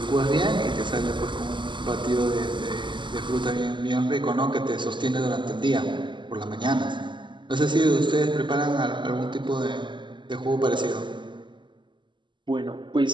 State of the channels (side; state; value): left; late; 0.23 ms